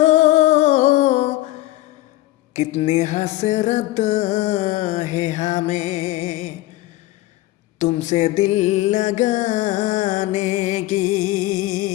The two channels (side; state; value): right; quieter; 17.2 dB